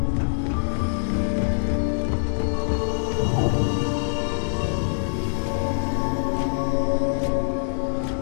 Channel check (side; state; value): right; silent; digital silence